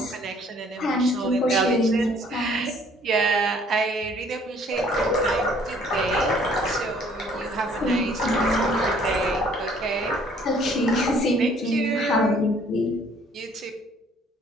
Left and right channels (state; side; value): normal; both; correlation 0.59